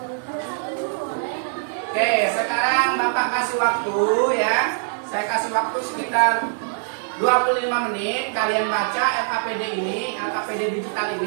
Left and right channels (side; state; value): left; silent; digital silence